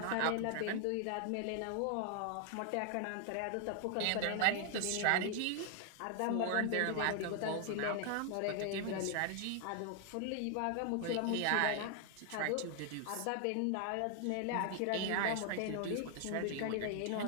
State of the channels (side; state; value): both; different; correlation 0.00